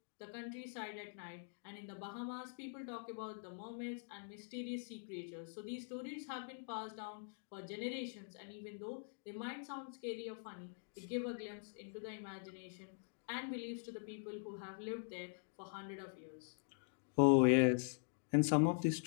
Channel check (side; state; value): right; silent; digital silence